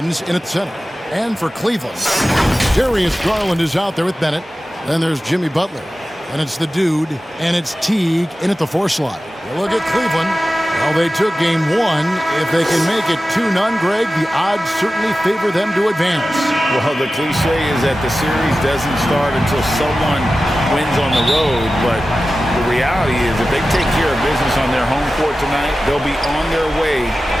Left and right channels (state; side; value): normal; both; correlation 0.95